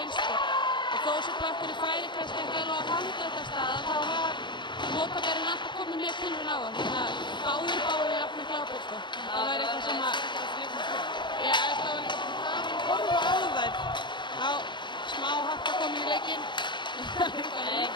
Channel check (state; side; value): late; right; 0.22 ms